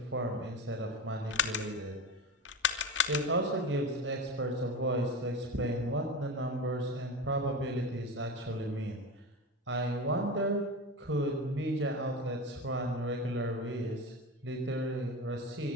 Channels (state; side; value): normal; both; correlation 0.26